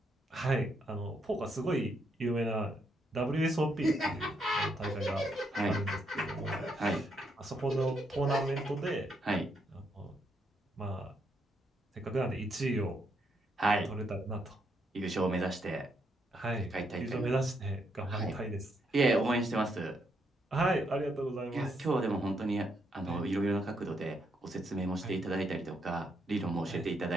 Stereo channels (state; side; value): normal; both; correlation 0.76